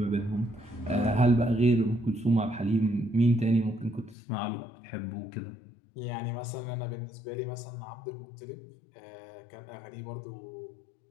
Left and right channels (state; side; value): drops out; right; at 4.2 s